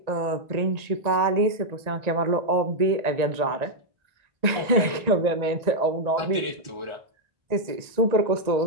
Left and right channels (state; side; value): late; left; 1.8 ms